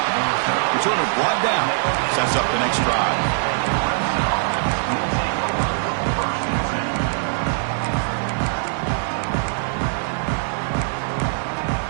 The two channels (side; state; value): left; silent; digital silence